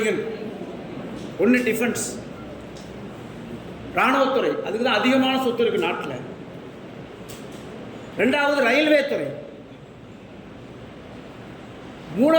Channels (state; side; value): identical; both; correlation 1.00